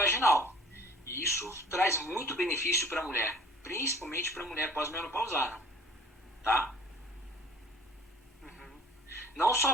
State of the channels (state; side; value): normal; both; correlation 0.48